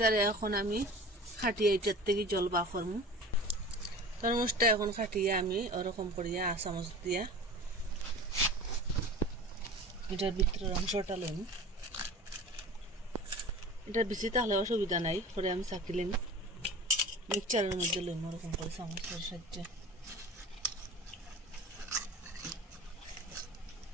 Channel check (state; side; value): normal; both; correlation 0.38